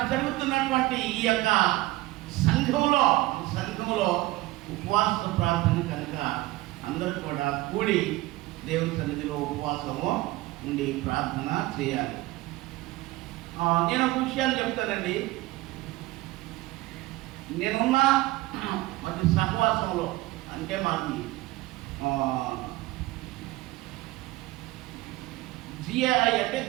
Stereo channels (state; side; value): quieter; left; 19.0 dB